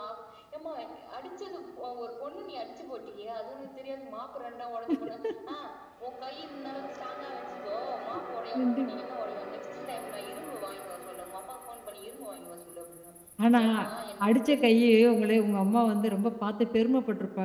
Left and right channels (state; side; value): identical; both; correlation 1.00